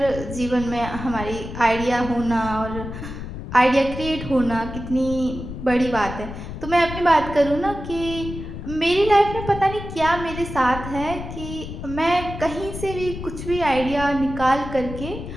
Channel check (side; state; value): left; noise; rumble, 9 dB below the sound